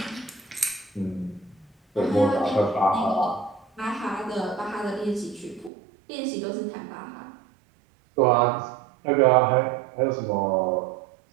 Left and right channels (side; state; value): left; drops out; at 5.7 s